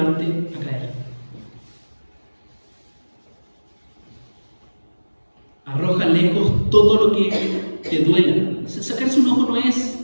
a caer. Arroja lejos todo lo que te duela. Sacarse un ojo no es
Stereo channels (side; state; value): both; inverted; correlation -1.00